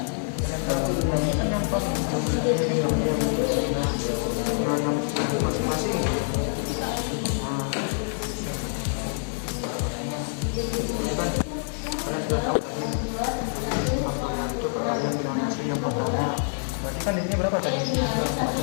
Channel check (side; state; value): right; silent; digital silence